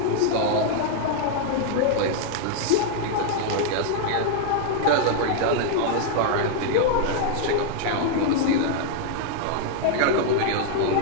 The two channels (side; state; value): both; different; correlation -0.01